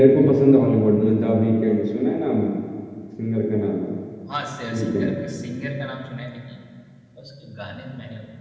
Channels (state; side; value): identical; both; correlation 1.00